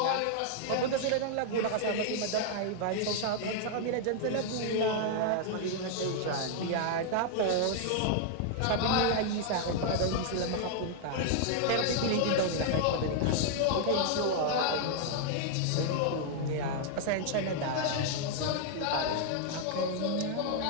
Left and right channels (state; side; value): different; both; correlation 0.00